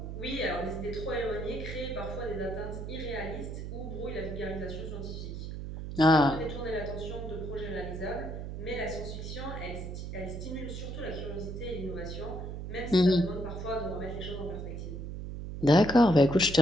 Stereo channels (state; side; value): noise; right; hum, 7 dB below the sound